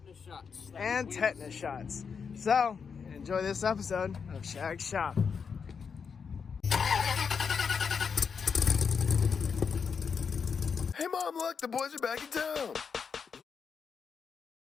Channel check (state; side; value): quieter; right; 6.1 dB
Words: shots. And tetanus shots. So, enjoy this episode of Shag's shop. Hey Mom, look, the boys are back in town.